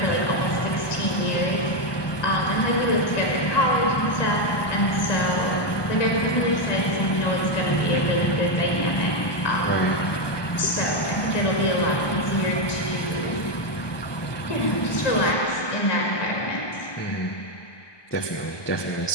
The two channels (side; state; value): right; late; 1.2 ms